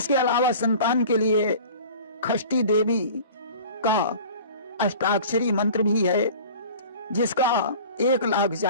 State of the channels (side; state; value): both; inverted; correlation -0.42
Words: अलावा संतान के लिए खष्टी देवी का अष्टाक्षरी मंत्र भी है, जिसका 1 लाख